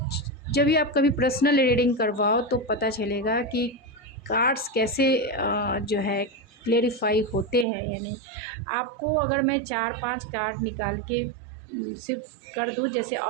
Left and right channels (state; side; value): drops out; left; at 7.7 s